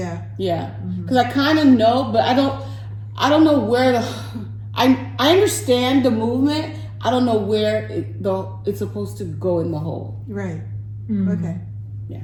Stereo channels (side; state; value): both; identical; correlation 1.00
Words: Yeah. Because I kind of know, but I don't know where I understand the movement. I don't know where it's supposed to go in the hole. Right. Okay. Yeah.